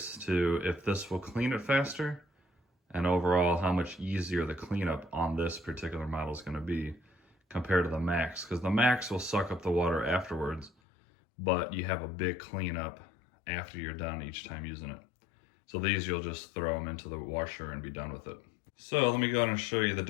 to if this will clean it faster, and overall how much easier the cleanup on this particular model is going to be compared to the Max, because the Max will suck up the water afterwards, but you have a big cleanup after you're done each time using it. So these you'll just throw them into the washer and be done with it. So let me go ahead and show you the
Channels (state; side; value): drops out; right; at 10.7 s